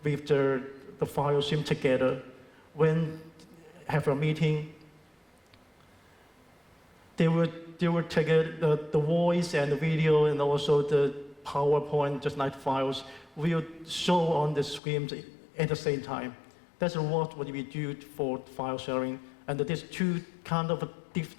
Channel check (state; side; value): drops out; right; at 14.8 s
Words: with the file stream together. When have a meeting, they will take the voice and the video and also the PowerPoint, just like files, will show on the screen at the same time. That's what we do for file sharing. And these two kind of